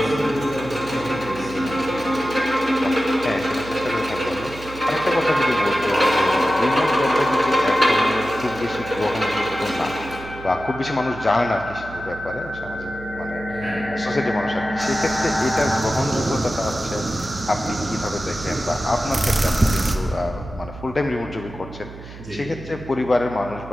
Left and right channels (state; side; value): noise; right; hum, 15 dB below the sound